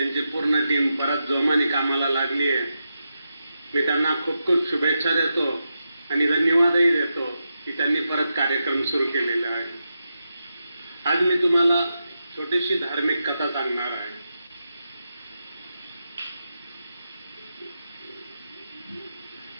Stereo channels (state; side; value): inverted; both; correlation -0.87